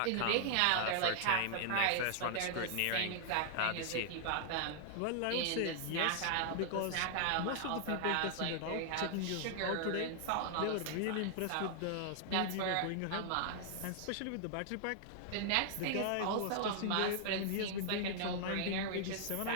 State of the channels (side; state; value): both; different; correlation -0.01